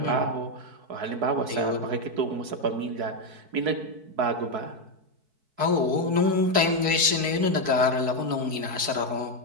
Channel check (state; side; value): late; left; 4.6 ms